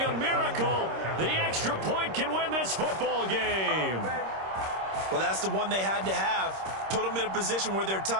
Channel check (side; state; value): left; late; 26 ms